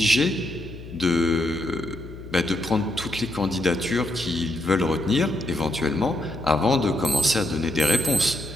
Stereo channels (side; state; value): left; noise; hum, 14 dB below the sound